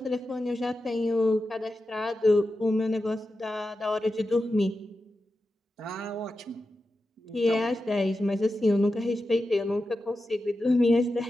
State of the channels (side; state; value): both; normal; correlation 0.91